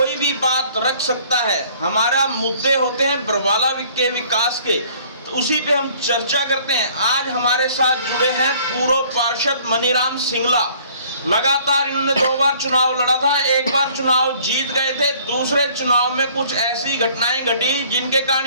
भी बात रख सकता है। हमारा मुद्दे होते हैं बरवाला के विकास के, तो उसी पे हम चर्चा करते हैं। आज हमारे साथ जुड़े हैं पूर्व पार्षद मनीराम सिंगला। लगातार इन्होंने 2 बार चुनाव लड़ा था, एक बार चुनाव जीत गए थे, दूसरे चुनाव में कुछ ऐसी घटनाएं घटी जिनके कारण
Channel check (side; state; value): both; inverted; correlation -0.56